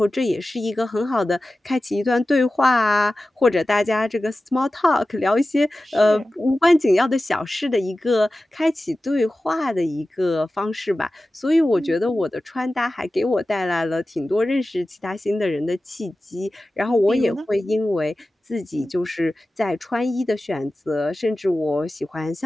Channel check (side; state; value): both; normal; correlation 0.95